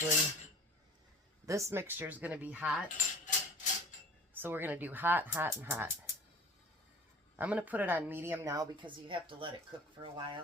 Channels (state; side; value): normal; both; correlation 0.43